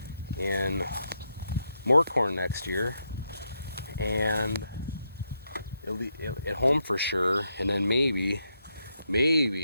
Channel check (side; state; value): both; inverted; correlation -0.81